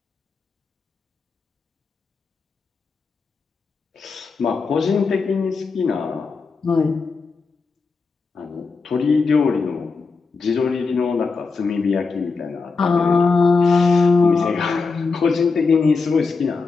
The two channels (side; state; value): right; quieter; 4.5 dB